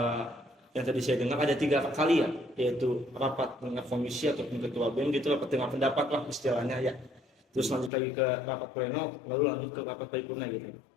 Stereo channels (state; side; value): drops out; right; at 7.9 s